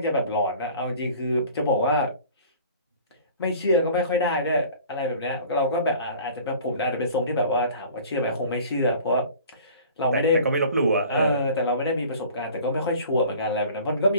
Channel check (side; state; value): both; inverted; correlation -0.46